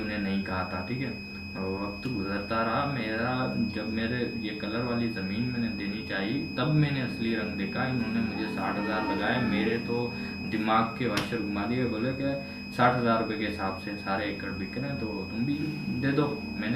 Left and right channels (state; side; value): identical; both; correlation 1.00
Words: उन्हें नहीं कहा था, ठीक है। वक्त गुजरता रहा मेरा, जब मेरे ये कलर वाली ज़मीन मैंने देनी चाहिए तब मैंने असली रंग देखा। इन्होंने मुझे 60 हज़ार लगाए, मेरे तो दिमाग के वाशर घुमा दिए। बोले कि 60 हज़ार रुपये के हिसाब से सारे एकड़ बिक रहे हैं तो तुम भी दे दो।